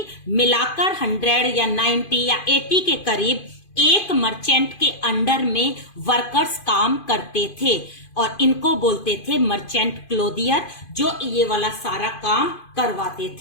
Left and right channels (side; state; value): right; late; 2.5 ms